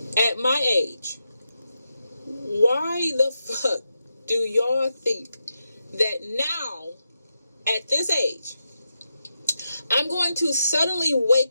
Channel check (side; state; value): both; inverted; correlation -0.87